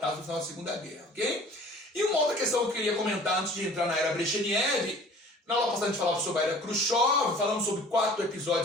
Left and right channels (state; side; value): normal; both; correlation 0.48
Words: do final da Segunda Guerra. Okay? E uma outra questão que eu queria comentar antes de entrar na era Brezhnev. Na aula passada a gente falava sobre a era Khrushchev, falamos sobre 4